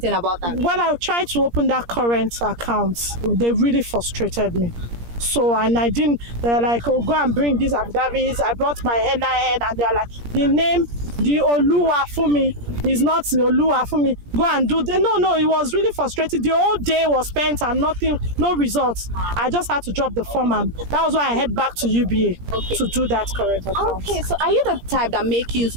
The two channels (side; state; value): left; late; 17 ms